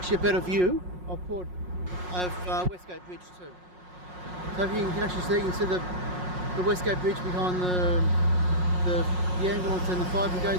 a better view of Westgate Bridge too. So if you can actually see, you can see the Westgate Bridge behind the ambulance and the fire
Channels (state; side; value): late; left; 5.5 ms